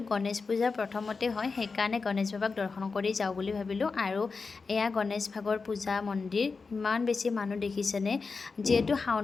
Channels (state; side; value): quieter; right; 4.5 dB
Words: গণেশ পূজা প্ৰথমতে হয়, সেইকাৰণে গণেশ বাবাক দৰ্শন কৰি যাওঁ বুলি ভাবিলোঁ। আৰু এয়া গণেশ ভাগৰ পূজা মন্দিৰ। ইমান বেছি মানুহ দেখিছেনে? যিহেতু